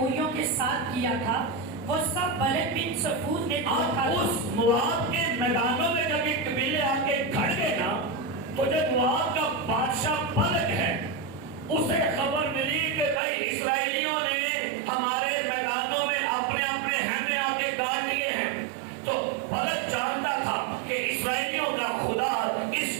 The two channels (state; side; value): drops out; left; at 13.2 s